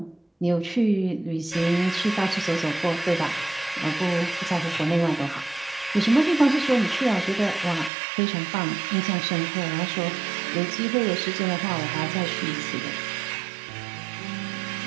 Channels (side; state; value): left; drops out; at 7.9 s